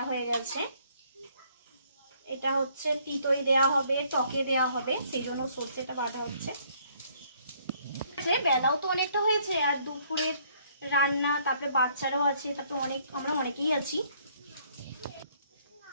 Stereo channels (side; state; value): both; inverted; correlation -0.65